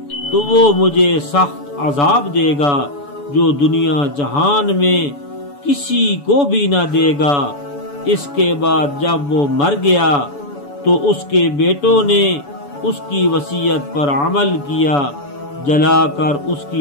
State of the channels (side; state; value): right; late; 7.0 ms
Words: تو وہ مجھے سخت عذاب دے گا جو دنیا جہان میں کسی کو بھی نہ دے گا۔ اس کے بعد جب وہ مر گیا تو اس کے بیٹوں نے اس کی وصیت پر عمل کیا، جلا کر اس